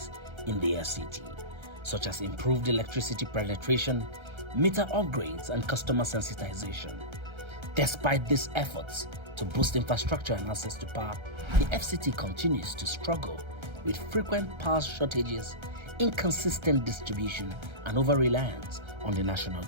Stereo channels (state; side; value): late; left; 1.3 ms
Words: in the FCT, such as improved electricity penetration, meter upgrades, and customer sensitization. Despite these efforts to boost infrastructure and access to power, the FCT continues to struggle with frequent power shortages, inconsistent distribution, and over-reliance on the national